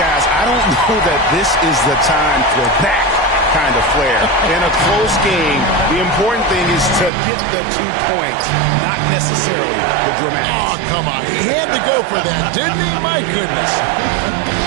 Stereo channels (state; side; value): drops out; left; at 7.1 s